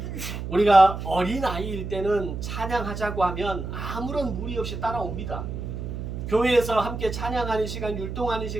우리가 어린아이일 때는 찬양하자고 하면 아무런 무리 없이 따라옵니다. 교회에서 함께 찬양하는 시간, 율동하는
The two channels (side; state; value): right; noise; hum, 6 dB below the sound